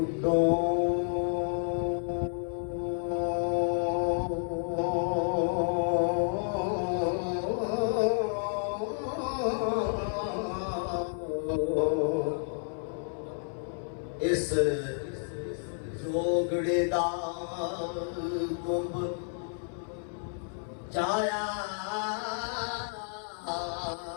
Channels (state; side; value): silent; right; 57 dB below the other